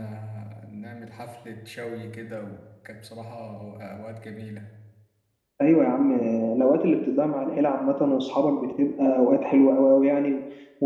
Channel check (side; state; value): both; identical; correlation 1.00